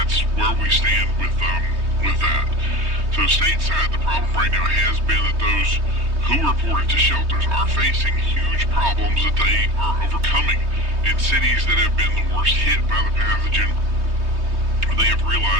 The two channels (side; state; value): left; late; 3.2 ms